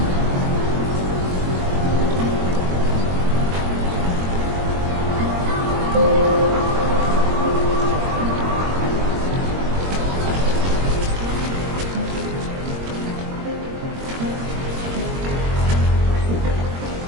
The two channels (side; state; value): left; late; 22 ms